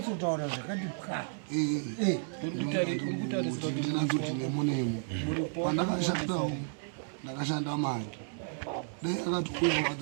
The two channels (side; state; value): left; silent; digital silence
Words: zvakati pwa uri kutarisira kuti ndinazoti nemonemo pandakashandawo ndakashanda mari dai akati uya